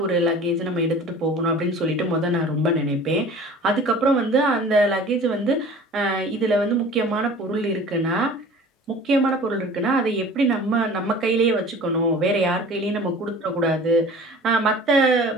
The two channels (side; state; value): both; normal; correlation 0.43